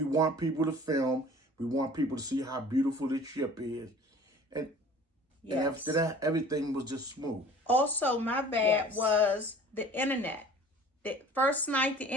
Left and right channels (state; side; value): normal; both; correlation 0.47